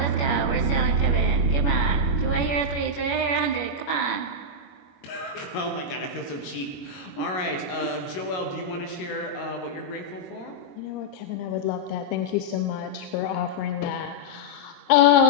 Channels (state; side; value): late; right; 21 ms